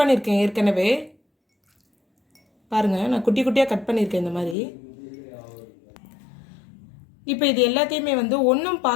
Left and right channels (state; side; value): drops out; right; at 4.5 s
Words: ஏற்கனவே. பாருங்கள், நான் குட்டி குட்டியாக கட் பண்ணியிருக்கேன் இந்த மாதிரி. இப்போ இது எல்லாத்தையுமே வந்து ஒன்றும்